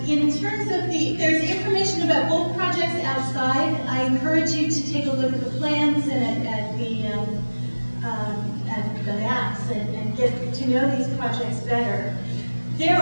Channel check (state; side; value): inverted; both; correlation -1.00